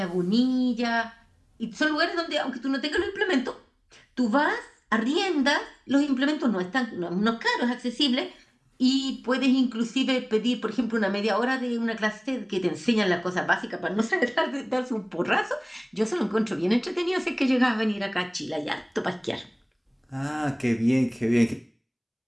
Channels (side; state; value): both; identical; correlation 1.00